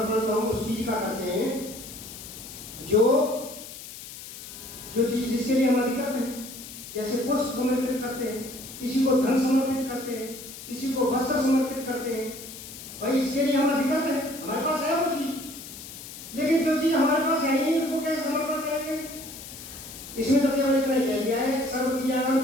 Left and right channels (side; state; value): left; noise; hiss, 13 dB below the sound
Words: तो हम उस चीज का करते हैं जो चीज जिसके लिए हम अधिकृत हैं। जैसे पुष्प समर्पित करते हैं, किसी को धन समर्पित करते हैं, किसी को वस्त्र समर्पित करते हैं। भाई इसके लिए हम अधिकृत हैं, हमारे पास है वो चीज, लेकिन जो चीज हमारे पास है ही नहीं उसको कैसे समर्पण करेंगे? इसमें तो केवल इतना ही कह दिया है, सर्व क्रियाओं